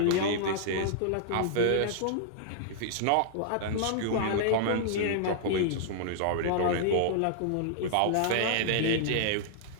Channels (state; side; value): different; both; correlation -0.01